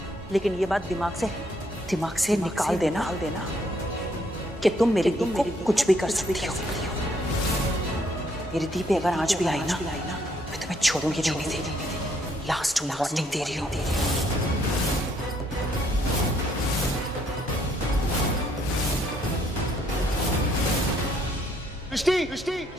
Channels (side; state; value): both; normal; correlation 0.69